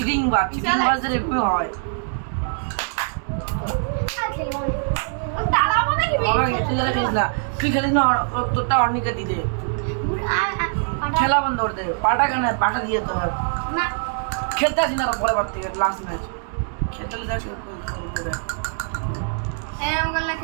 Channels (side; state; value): left; silent; 62 dB below the other